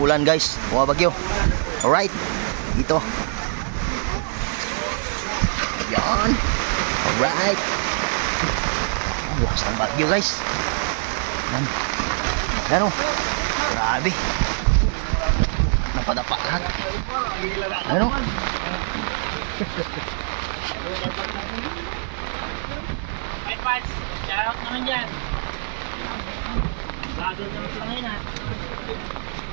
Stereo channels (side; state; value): left; silent; digital silence